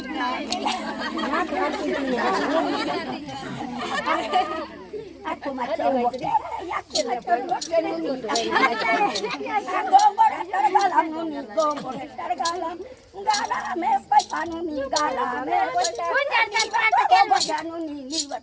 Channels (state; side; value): identical; both; correlation 1.00